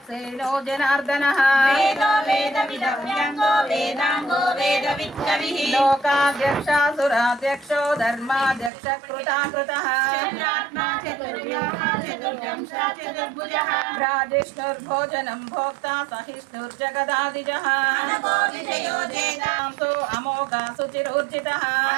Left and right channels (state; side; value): drops out; left; at 8.7 s